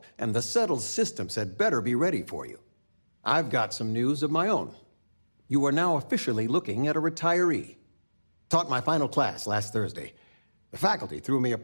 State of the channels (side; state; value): both; inverted; correlation -1.00